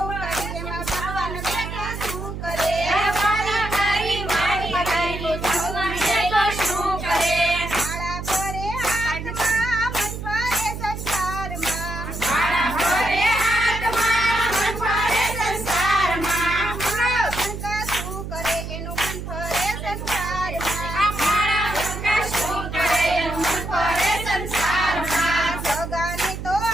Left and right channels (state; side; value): noise; right; hum, 7 dB below the sound